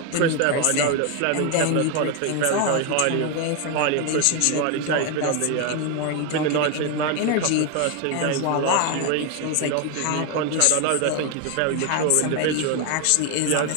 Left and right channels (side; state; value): both; different; correlation 0.01